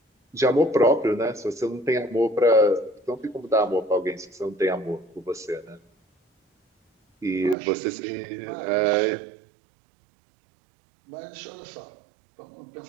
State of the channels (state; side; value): drops out; left; at 7.6 s